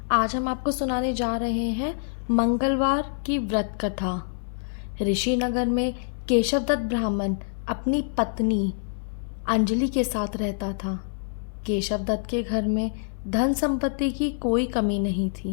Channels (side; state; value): right; silent; 58 dB below the other